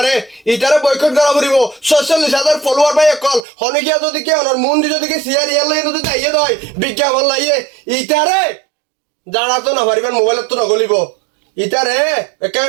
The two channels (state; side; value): drops out; left; at 3.4 s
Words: ইতারে বয়কট করা পড়িব 46,000 ফলোয়ার বাই কল হনে গিয়া যদি কে অনর মন যদি কি সিয়ার ইয়ার লই যদি দাইয়ে দয় বিজ্ঞাপন লাইয়ে ইতারে জানা তো না পারিবেন মোবাইলত তো নগলিব ইতারে একে